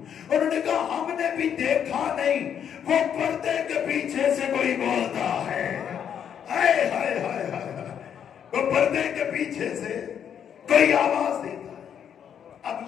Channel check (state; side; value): quieter; right; 8.6 dB